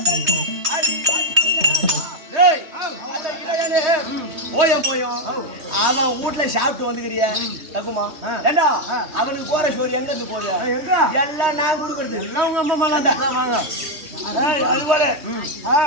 போயும் அவன் வீட்டுல சாப்பிட்டு வந்துக்கிறிய தக்குமா ஏண்டா அவனுக்கு போற சோறு எங்க இருந்து போகுது? எல்லாம் நான் கொடுக்கறது. எல்லாம் உங்க அம்மா மேலாண்டா வாங்க. அது போல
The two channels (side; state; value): left; late; 3.2 ms